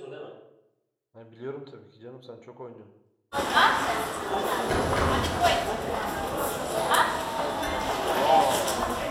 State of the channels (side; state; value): both; identical; correlation 1.00